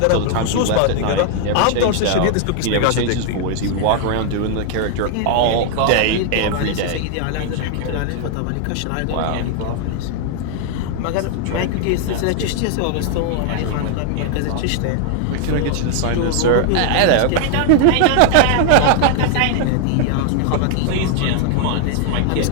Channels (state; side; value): different; both; correlation 0.00